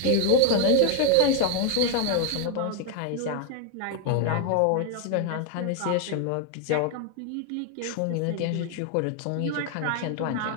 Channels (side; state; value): both; different; correlation 0.00